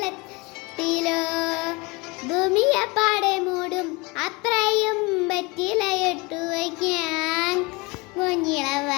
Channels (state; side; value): quieter; right; 26.3 dB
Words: ഭൂമിയപ്പാടെ മൂടും അത്രയും വെറ്റിലയിട്ടു വയ്ക്കാൻ.